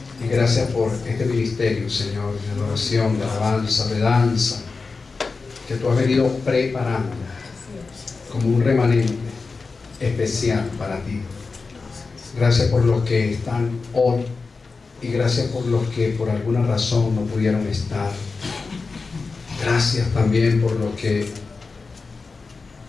Y gracias por este ministerio, Señor, de adoración, de alabanza, de danza, que tú has venido preparando como un remanente especial para ti. Gracias por los que están hoy y gracias por los que por alguna razón no pudieron estar. Gracias también por los que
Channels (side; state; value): right; quieter; 4.3 dB